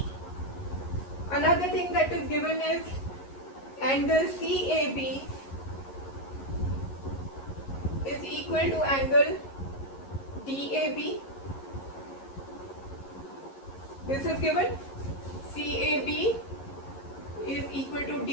Another thing that is given is angle CAB is equal to angle DAB. This is given. CAB is equal to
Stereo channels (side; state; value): right; late; 11 ms